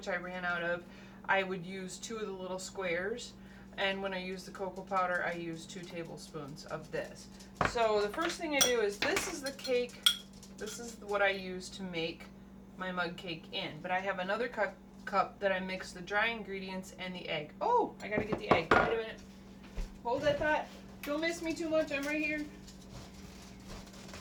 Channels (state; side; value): identical; both; correlation 1.00